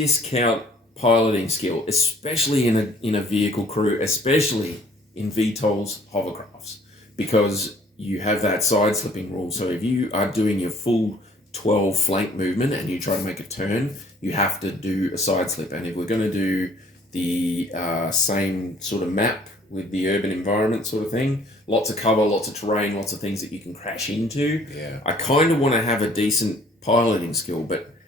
piloting skill, especially in a vehicle crew, especially in VTOL's hovercrafts, because you have that side slipping rule. So if you are doing your full 12 flank movement and you try to make a turn, you have to do a side slip. And if we're going to do the same sort of map with the urban environment sort of thing. Lots of cover, lots of terrain, lots of things that you can crash into. Yeah. I kind of want to have a decent piloting skill, but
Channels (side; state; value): both; normal; correlation 0.57